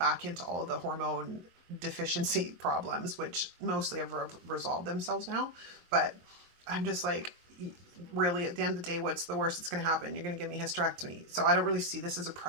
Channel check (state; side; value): late; left; 23 ms